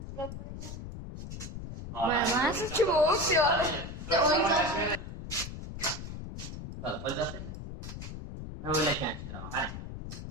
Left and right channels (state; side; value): noise; left; rumble, 9 dB below the sound